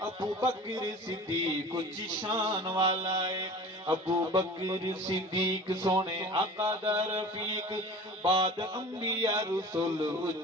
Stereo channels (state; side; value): normal; both; correlation 0.38